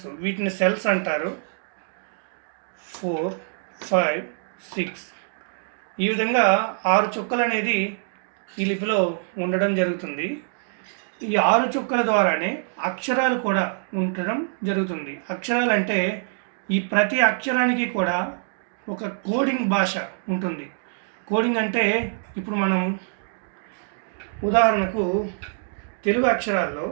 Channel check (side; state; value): left; silent; digital silence